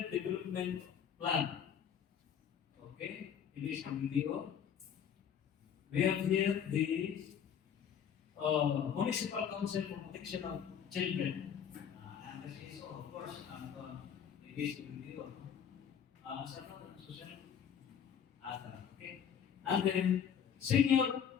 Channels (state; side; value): quieter; right; 8.2 dB